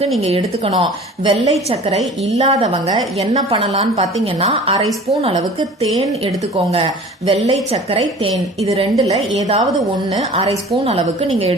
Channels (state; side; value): normal; both; correlation 0.43